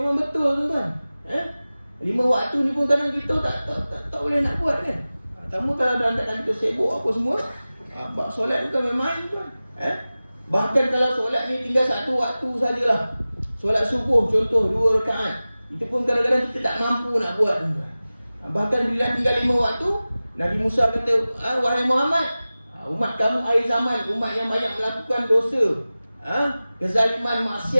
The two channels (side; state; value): both; inverted; correlation -0.97